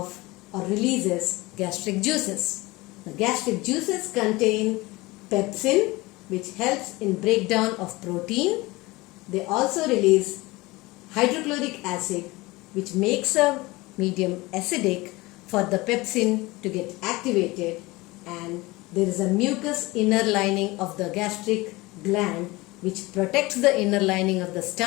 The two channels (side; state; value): right; quieter; 21.6 dB